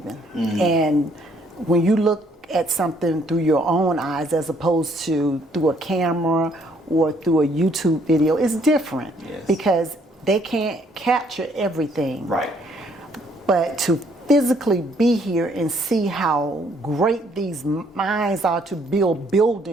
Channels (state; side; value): normal; both; correlation 0.66